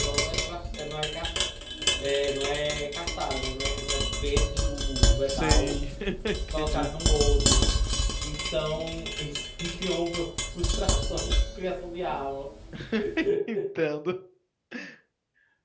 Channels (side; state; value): both; identical; correlation 1.00